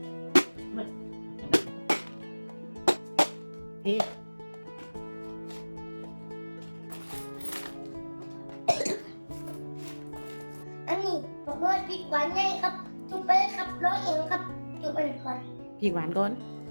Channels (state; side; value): inverted; both; correlation -1.00